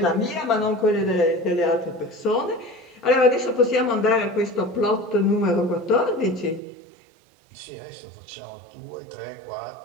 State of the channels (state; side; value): drops out; left; at 6.6 s